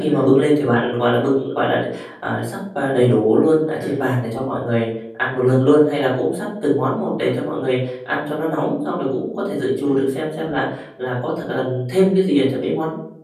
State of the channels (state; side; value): identical; both; correlation 1.00